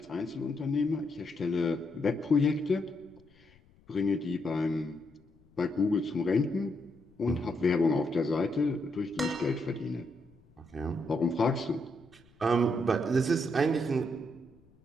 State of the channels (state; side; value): noise; left; rumble, 29 dB below the sound